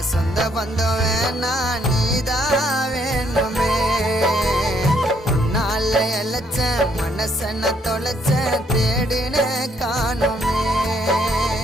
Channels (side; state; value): both; normal; correlation 0.69